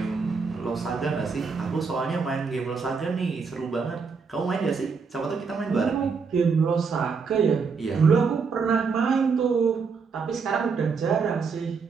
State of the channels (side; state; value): left; quieter; 5.3 dB